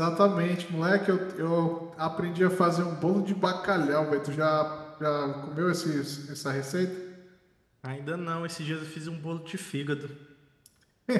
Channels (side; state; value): both; identical; correlation 1.00